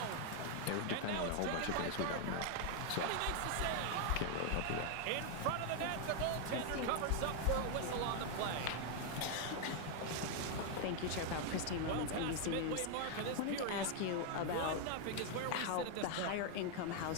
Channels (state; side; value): different; both; correlation 0.00